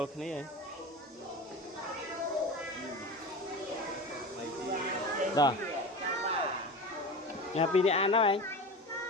cái này rồi nhà pin đi ăn đó anh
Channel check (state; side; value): normal; both; correlation 0.30